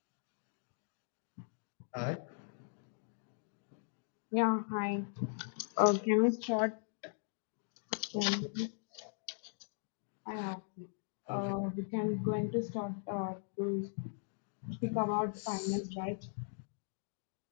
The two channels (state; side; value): silent; right; digital silence